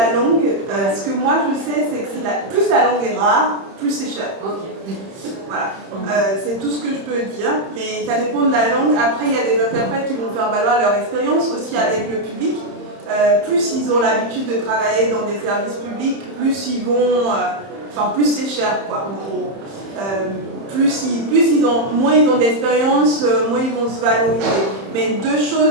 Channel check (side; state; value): left; late; 31 ms